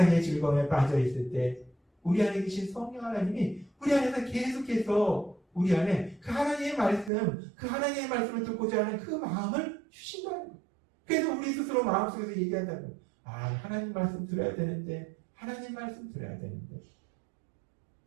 즐거움에 빠져 있을 때 우리 안에 계신 성령 하나님이 우리 안에서 계속해서 우리 안에 그 하나님의 말씀, 그 하나님의 말씀을 듣고자 하는 그 마음을 주신다는 거예요. 그래서 우리 스스로 마음속에서 얘기한다는 거예요. 하나님 말씀 들어야 되는데, 하나님 말씀 들어야 되는데.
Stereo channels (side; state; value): left; drops out; at 7.1 s